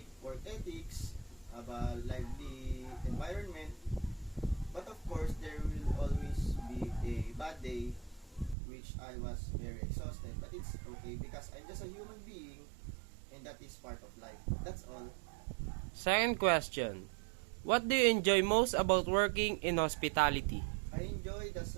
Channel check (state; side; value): drops out; left; at 8.6 s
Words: work ethics, have a lively environment, but of course there will always be a bad day which I was very exhausted, but it's okay because I'm just a human being and that is part of life. That's all. Second question, what do you enjoy most about working in hospitality? I enjoy the